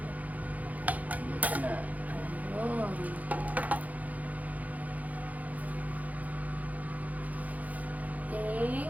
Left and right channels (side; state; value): left; late; 0.077 ms